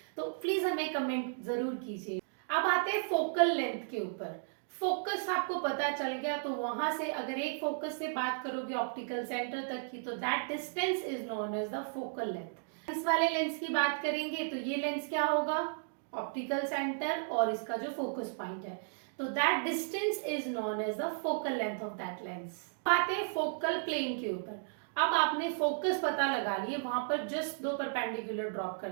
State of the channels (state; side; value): silent; left; digital silence